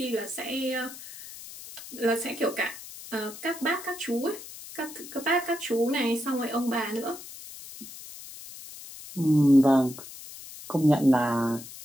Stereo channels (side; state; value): left; noise; hiss, 14 dB below the sound